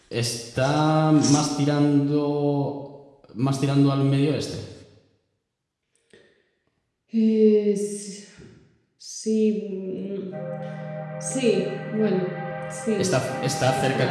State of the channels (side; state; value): both; identical; correlation 1.00